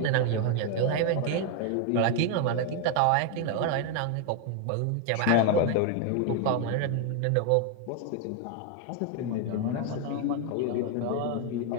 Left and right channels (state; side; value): different; both; correlation 0.01